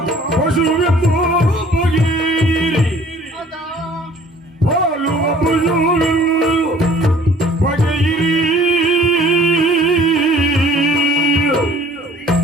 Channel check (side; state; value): both; normal; correlation 0.53